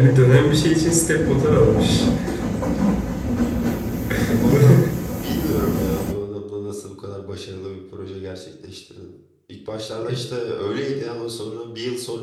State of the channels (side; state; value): both; identical; correlation 1.00